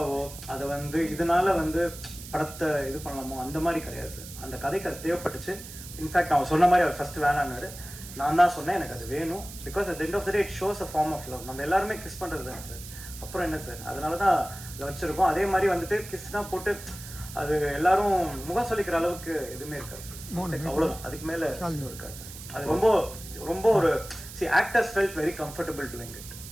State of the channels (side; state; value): right; noise; hiss, 14 dB below the sound